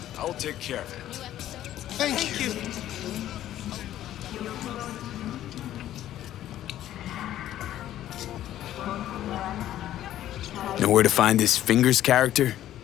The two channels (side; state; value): right; quieter; 12.7 dB